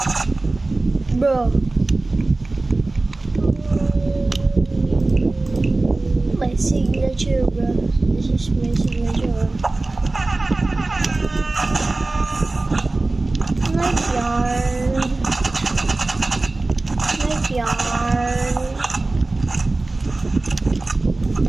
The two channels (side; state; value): left; quieter; 3.1 dB